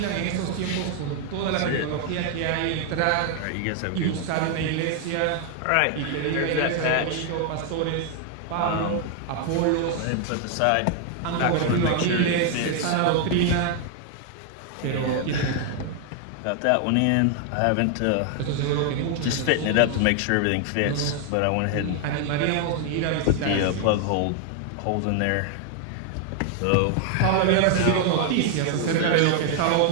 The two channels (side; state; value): both; different; correlation 0.00